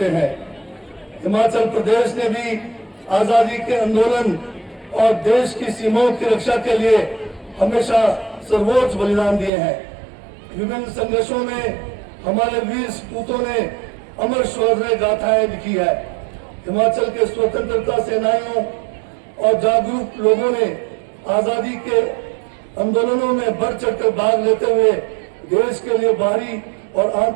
हैं। हिमाचल प्रदेश ने भी आजादी के आंदोलन और देश की सीमाओं की रक्षा के लिए हमेशा सर्वोच्च बलिदान दिए हैं। विभिन्न संघर्षों में हमारे वीर सपूतों ने अमर शौर्य गाथाएं लिखी है। हिमाचल के स्वतंत्रता सेनानियों और जागरूक लोगों ने आजादी के आंदोलनों में बढ़ चढ़कर भाग लेते हुए देश के लिए बाहरी और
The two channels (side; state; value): left; drops out; at 9.5 s